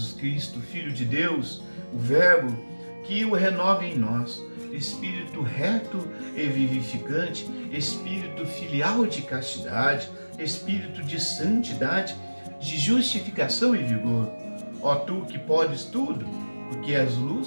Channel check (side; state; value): both; inverted; correlation -1.00